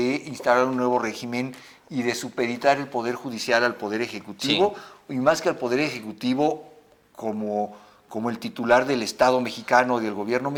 instaurar un nuevo régimen y de supeditar el Poder Judicial al Poder Ejecutivo, y más que al Poder Ejecutivo como como el titular del Estado mexicano y del gobierno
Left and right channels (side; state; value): both; identical; correlation 1.00